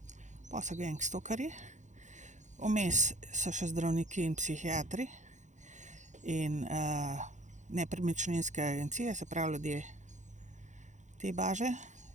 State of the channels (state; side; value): late; left; 0.35 ms